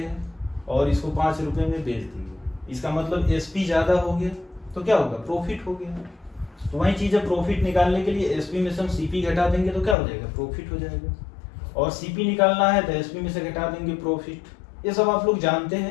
और इसको 5 रुपये में बेच दिए। इसका मतलब एसपी ज़्यादा हो गया तो क्या होगा? प्रॉफिट हो गया। तो वही चीज़ है, प्रॉफिट निकालने के लिए एसपी में से हम सीपी घटा देंगे तो क्या हो जाएगा? प्रॉफिट हो जाएगा। और सीपी निकालना है तो एसपी में से घटा देंगे, प्रॉफिट। ये सब आप लोग जानते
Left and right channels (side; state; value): right; drops out; at 10.0 s